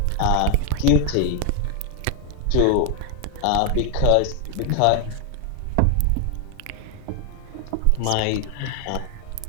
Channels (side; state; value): both; different; correlation 0.01